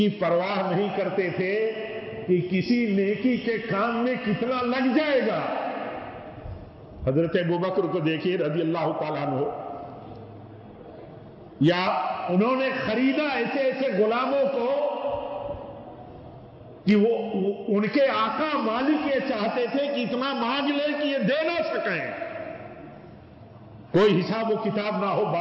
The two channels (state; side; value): identical; both; correlation 1.00